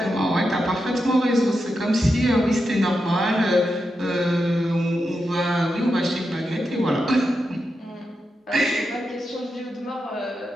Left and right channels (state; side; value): normal; both; correlation 0.87